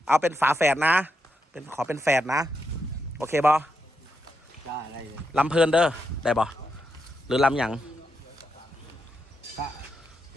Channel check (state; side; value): normal; both; correlation 0.83